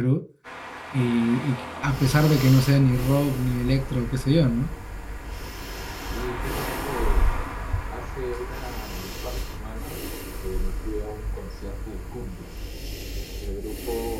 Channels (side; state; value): both; identical; correlation 1.00